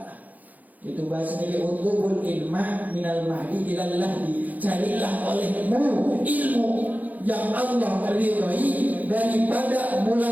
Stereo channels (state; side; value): late; left; 0.080 ms